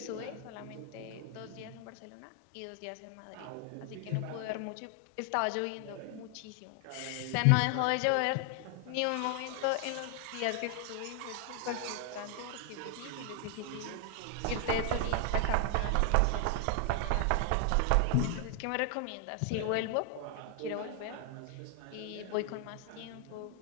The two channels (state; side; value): different; both; correlation 0.00